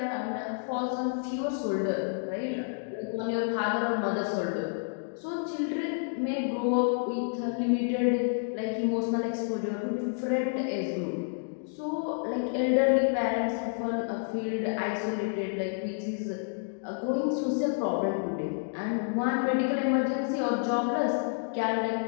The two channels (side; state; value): right; silent; digital silence